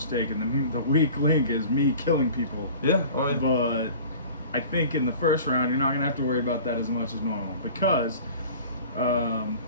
the weak link is me killing people. Yeah. Oh, yeah. But I think in the first round, you're not going to have to worry about that as much as normal because,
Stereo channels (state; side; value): inverted; both; correlation -0.42